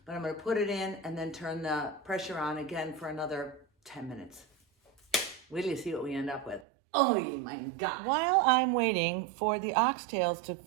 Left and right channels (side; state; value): left; drops out; at 6.7 s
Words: but I'm gonna put it in and then turn the pressure on again for another 10 minutes. Wait till you see what we end up with. Oh my God. While I'm waiting for the oxtails to